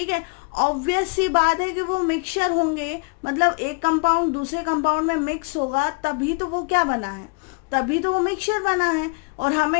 है। ऑब्वियस सी बात है कि वो मिक्सचर होंगे, मतलब एक कंपाउंड दूसरे कंपाउंड में मिक्स होगा तभी तो वो क्या बना है, तभी तो वो मिक्सचर बना है। और हमें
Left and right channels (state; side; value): quieter; right; 33.5 dB